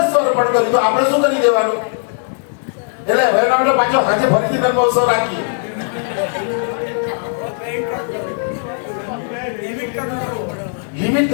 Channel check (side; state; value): right; silent; digital silence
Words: અર્પણ કર્યું તો આપણે શું કરી દેવાનું? એટલે હવે આપણે પાછો આજે ફરીથી નંદ મહોત્સવ રાખીએ. લિમિટ